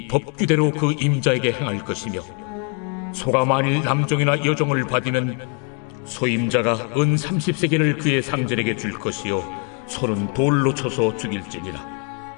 법규대로 그 임자에게 행할 것이며 소가 만일 남종이나 여종을 받으면 소임자가 은 30세겔을 그의 상전에게 줄 것이요 소는 돌로 쳐서 죽일지니라.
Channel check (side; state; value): right; quieter; 38.7 dB